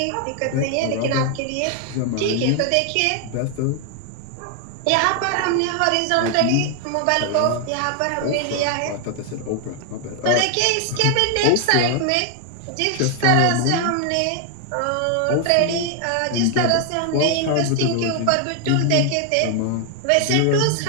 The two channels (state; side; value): different; both; correlation 0.00